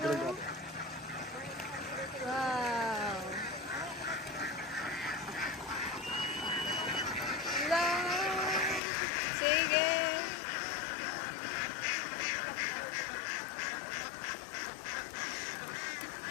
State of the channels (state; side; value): drops out; right; at 8.8 s